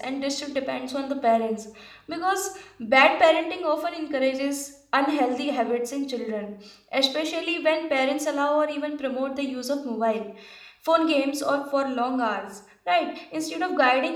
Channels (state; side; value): identical; both; correlation 1.00